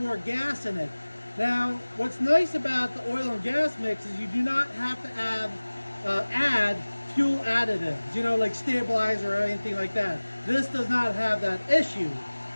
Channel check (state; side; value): inverted; both; correlation -1.00